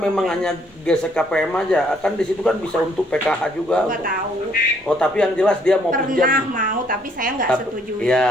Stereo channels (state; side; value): normal; both; correlation 0.67